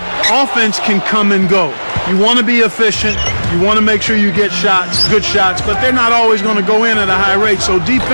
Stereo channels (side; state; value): both; inverted; correlation -1.00